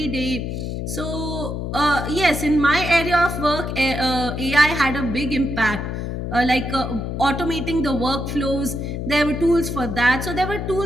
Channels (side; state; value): left; noise; hum, 4 dB below the sound